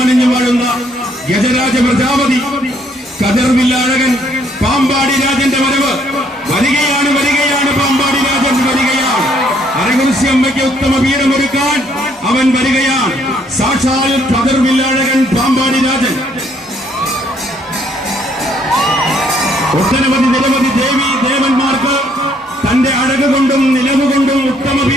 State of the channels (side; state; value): both; normal; correlation 0.67